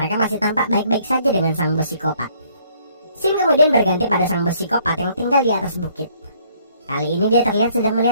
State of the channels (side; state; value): both; inverted; correlation -0.63